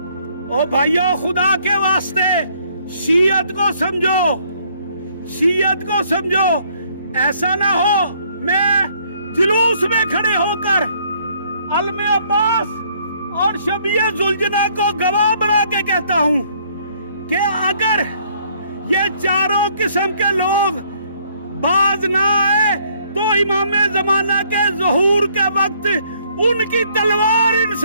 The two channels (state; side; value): inverted; both; correlation -0.65